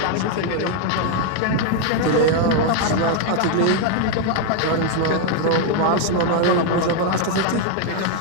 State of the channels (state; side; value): different; both; correlation 0.01